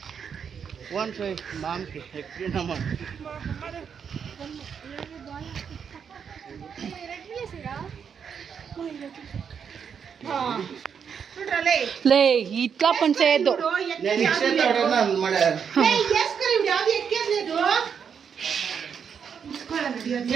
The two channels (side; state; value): left; quieter; 7.1 dB